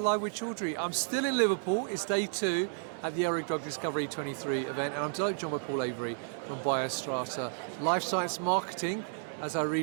with Chaudhry. I'm still in Liverpool, it's day 2 at the ELRIG Drug Discovery 23 event, and I'm delighted to join by Paul Avery from BioStrata, Life Science Marketing, as I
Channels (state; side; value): silent; left; digital silence